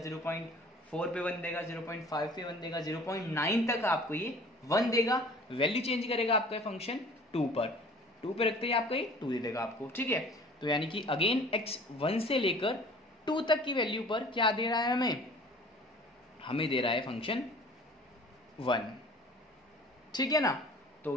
पे 1 देगा, 0.5 पे 1 देगा, 0.9 तक आपको ये 1 देगा। वैल्यू चेंज करेगा आपका फंक्शन 2 पर, 2 पे रखते ही आपको ये 2 दे देगा आपको, ठीक है। तो यानी कि अगेन x 1 से लेकर 2 तक की वैल्यू पर क्या दे रहा है हमें दे रहा है फंक्शन 1, ठीक है ना।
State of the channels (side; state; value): both; normal; correlation 0.47